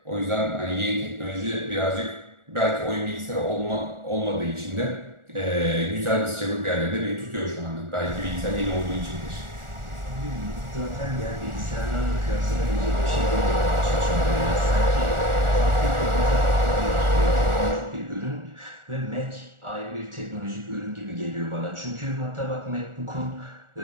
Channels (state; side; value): late; left; 1.4 ms